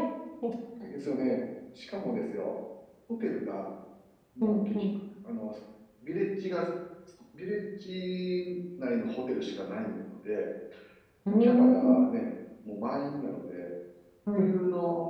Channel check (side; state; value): both; identical; correlation 1.00